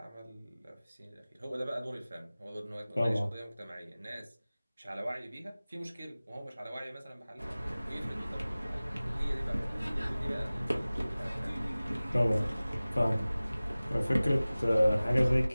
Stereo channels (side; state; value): both; inverted; correlation -0.98